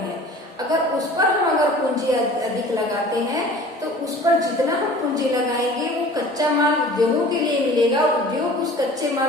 अगर उस पर हम पूंजी अधिक लगाते हैं तो उस पर जितना हम पूंजी लगाएंगे वो कच्चा माल उद्योगों के लिए मिलेगा, उद्योग उस कच्चे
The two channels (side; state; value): both; normal; correlation 0.44